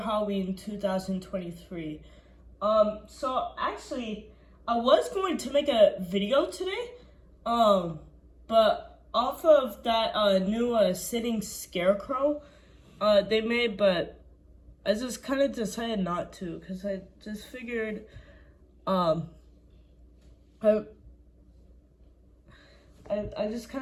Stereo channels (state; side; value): identical; both; correlation 1.00